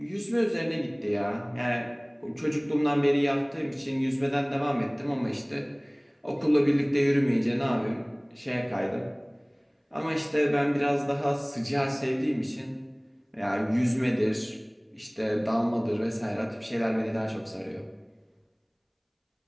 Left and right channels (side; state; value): both; identical; correlation 1.00